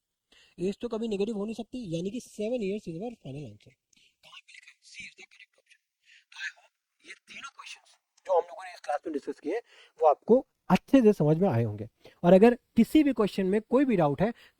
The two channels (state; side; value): identical; both; correlation 1.00